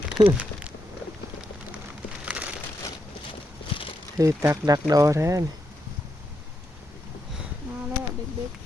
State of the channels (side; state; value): both; normal; correlation 0.82